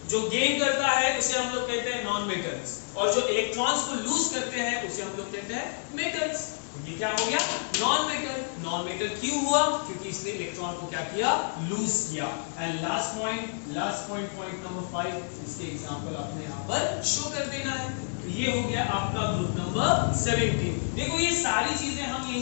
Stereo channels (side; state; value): right; silent; 59 dB below the other